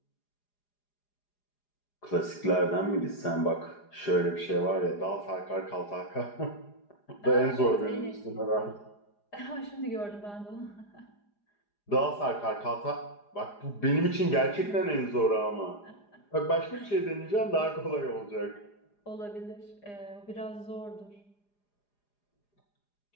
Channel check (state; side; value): late; right; 4.9 ms